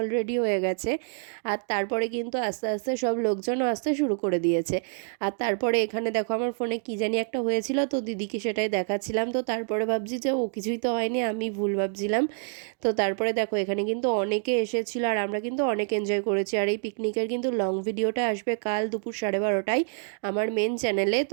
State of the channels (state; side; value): silent; left; 60 dB below the other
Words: অলরেডি হয়ে গেছে। আর তারপরে কিন্তু আস্তে আস্তে সব লোকজনও আসতে শুরু করে দিয়েছে। আর তারপরে এখানে দেখো আমার ফোনে কী জানি একটা হয়েছিল, তো দিদিকে সেটাই দেখাচ্ছিলাম। তো তারপরে ভাবছি যে ও কিছুই তো হয়নি, আমি ভুল ভাবছিলাম। তো তারপরে দেখো এখানে কিন্তু অনেকে এসেছিলো, আর আমরা কিন্তু অনেক এনজয় করেছি। আর এই পিকনিকের কিন্তু লং ভিডিওটা আসবে কাল দুপুর 12:30টায় আমার মেন চ্যানেলে।